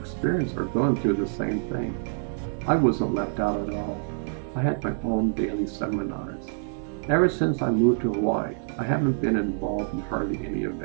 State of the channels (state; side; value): silent; left; digital silence